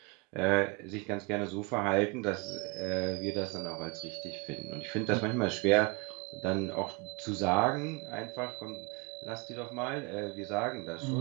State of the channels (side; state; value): left; quieter; 28.8 dB